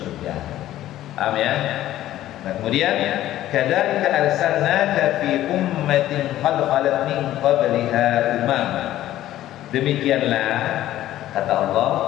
Paham ya? Nah, kemudian kadzalika arsalnaka fi ummatin qad khalat min qabliha umam. Demikianlah kata Allah,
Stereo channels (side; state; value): right; quieter; 13.6 dB